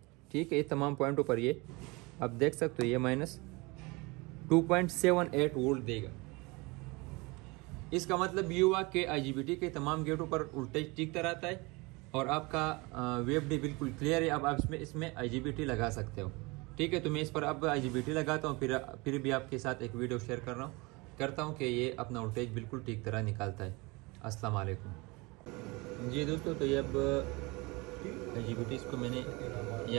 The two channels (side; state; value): left; quieter; 25.6 dB